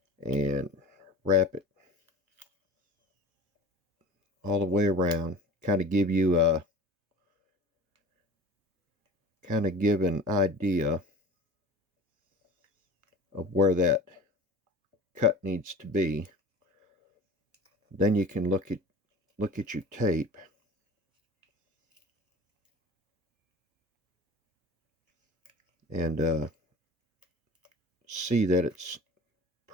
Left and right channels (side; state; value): both; normal; correlation 0.38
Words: And wrap it all the way around. Kind of give you a give an idea of where that cut needs to be. Then you can look at your tape and see that it's